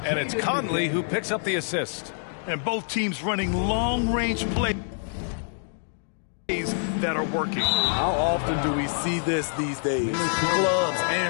And it's Conley who picks up the assist. And both teams running long-range plays that are working. How often do we see this these days? Clubs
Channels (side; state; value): right; silent; digital silence